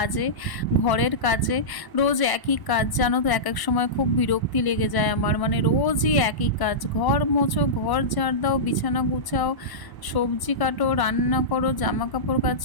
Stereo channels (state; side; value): late; right; 1.0 ms